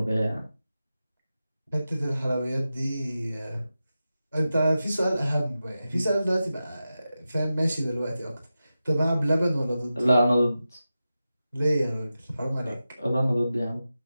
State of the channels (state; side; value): inverted; both; correlation -0.93